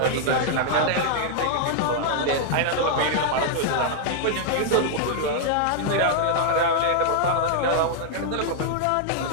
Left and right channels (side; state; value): both; different; correlation -0.01